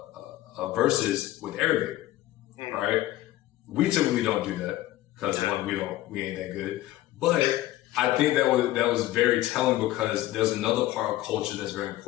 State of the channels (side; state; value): right; quieter; 15.6 dB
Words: verses with Arabic, right? We typically don't do that because one, we ain't that good. But I think that was very telling, because there's another part of culture that's very